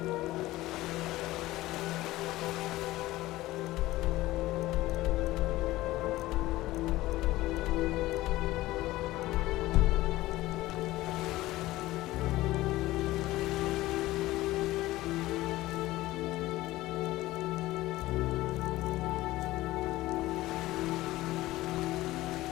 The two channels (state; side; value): quieter; right; 17.4 dB